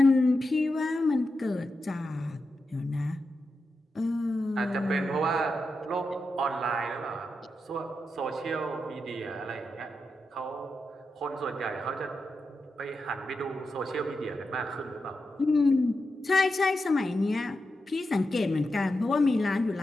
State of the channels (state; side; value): normal; both; correlation 0.88